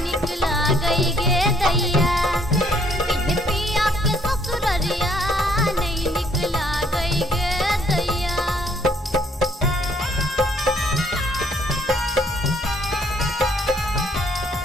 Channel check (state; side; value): normal; both; correlation 0.66